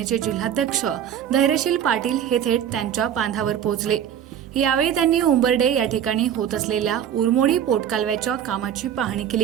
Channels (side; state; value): left; quieter; 9.5 dB